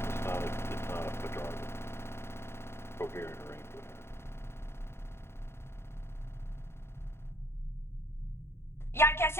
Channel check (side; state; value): right; late; 0.12 ms